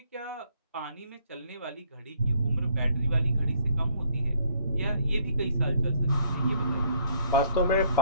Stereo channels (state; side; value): inverted; both; correlation -0.65